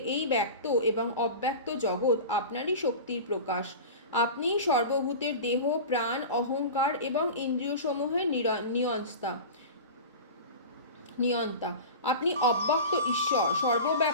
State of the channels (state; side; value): inverted; both; correlation -0.31